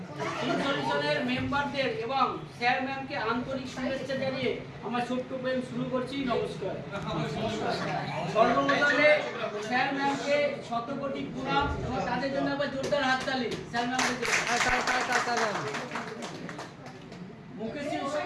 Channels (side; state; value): both; identical; correlation 1.00